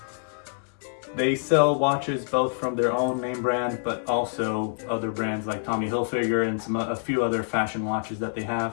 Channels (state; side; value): silent; right; 60 dB below the other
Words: They sell watches both from their own name brand, but also other brands like Tommy Hilfiger and a few other fashion watches that they